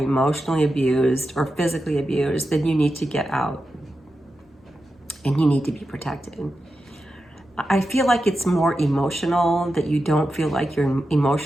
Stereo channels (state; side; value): normal; both; correlation 0.90